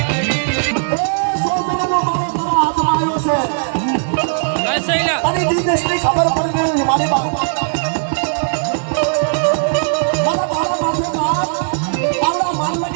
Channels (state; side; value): silent; left; digital silence